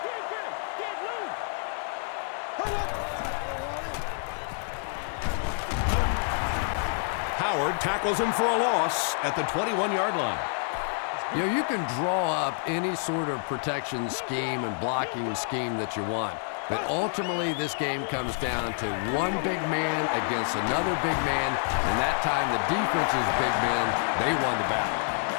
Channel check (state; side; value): silent; right; 59 dB below the other